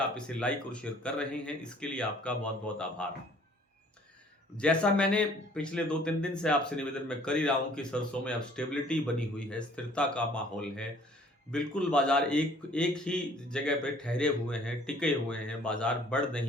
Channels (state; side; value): normal; both; correlation 0.56